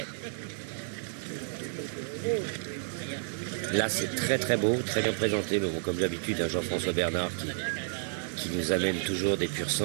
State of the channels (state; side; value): silent; left; digital silence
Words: Là, c'est très très beau, très bien présenté. Mais bon, comme d'habitude, Jean-François Bernard qui nous amène toujours des pur